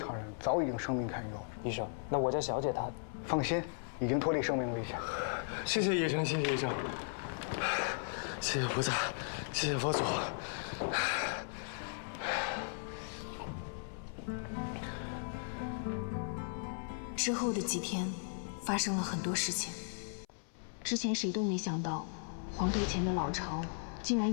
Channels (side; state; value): right; silent; 53 dB below the other